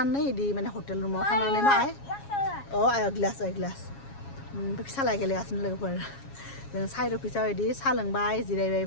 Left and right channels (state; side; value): late; right; 7.3 ms